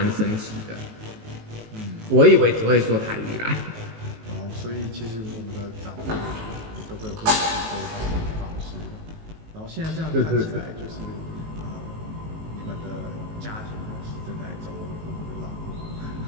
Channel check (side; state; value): left; late; 19 ms